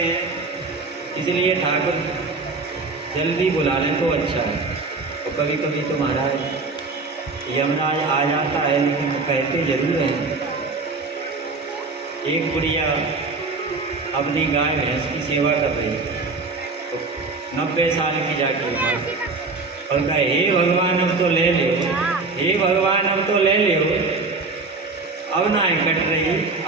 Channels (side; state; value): left; quieter; 3.9 dB